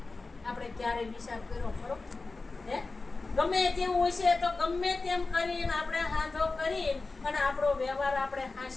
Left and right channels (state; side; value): quieter; right; 3.7 dB